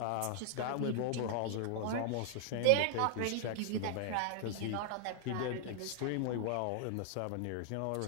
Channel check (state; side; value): different; both; correlation -0.01